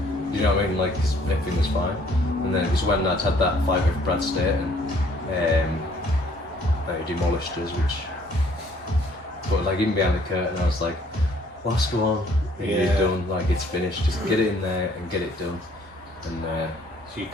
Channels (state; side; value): normal; both; correlation 0.61